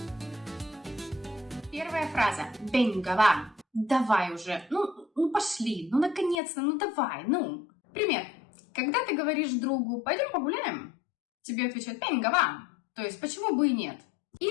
Первая фраза. Venga, va. Давай уже. Ну пошли. Ну наконец-то. Ну давай. Ну. Пример. Когда ты говоришь другу «пойдем погуляем», тебе отвечают «venga, va». То есть почему бы и нет.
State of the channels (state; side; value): drops out; right; at 6.4 s